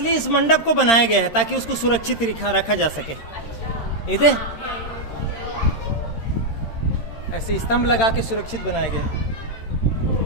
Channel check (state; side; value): late; right; 13 ms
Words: इस मंडप को बनाया गया है ताकि उसको सुरक्षित रखा जा सके। इधर ऐसे स्तंभ लगा के सुरक्षित बनाया गया है।